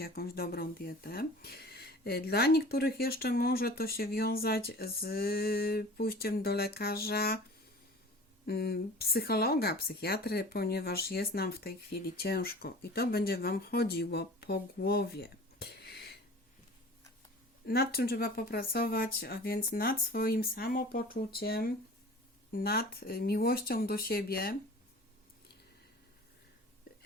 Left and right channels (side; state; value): both; normal; correlation 0.42